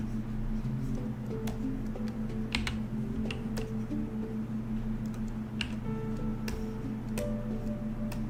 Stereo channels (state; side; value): identical; both; correlation 1.00